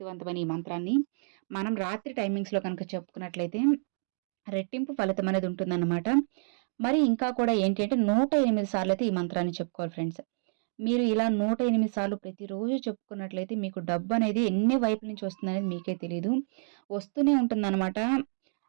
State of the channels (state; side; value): silent; left; digital silence